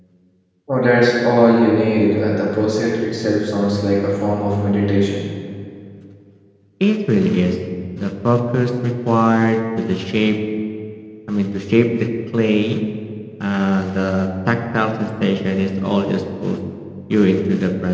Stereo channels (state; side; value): identical; both; correlation 1.00